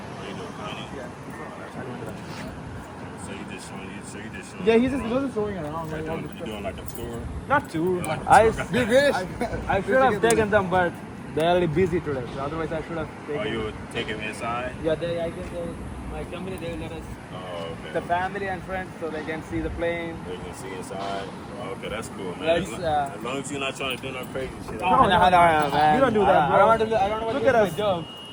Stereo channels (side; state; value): both; identical; correlation 1.00